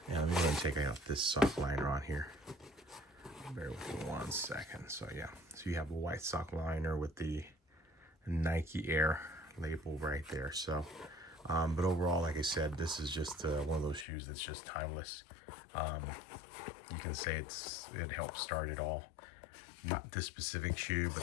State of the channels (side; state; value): right; drops out; at 14.1 s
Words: And let me go ahead and take out this sock liner on here. Bear with me 1 second. So yeah, so you have a white sock liner with the Nike Air label right there. So but overall, like I said, this is just one of those shoes that's just timeless. You can say it helped start it all. Not this specific shoe,